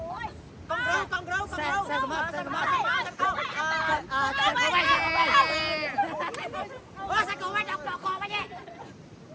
con râu xe mập xe cổ bay đọc đọc con bay nhé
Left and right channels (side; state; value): both; identical; correlation 1.00